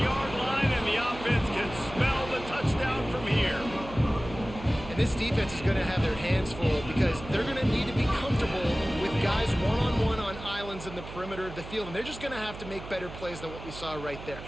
line, and the offense can smell the touchdown from here. This defense is going to have their hands full because they're going to need to be comfortable with guys one-on-one on islands in the perimeter of the field, and they're just going to have to make better plays than what we saw right there.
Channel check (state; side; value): noise; right; hum, 12 dB below the sound